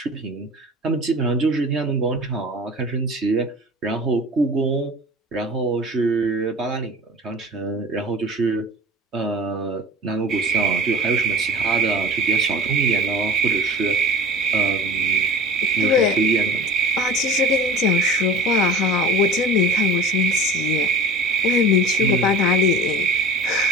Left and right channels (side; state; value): both; normal; correlation 0.38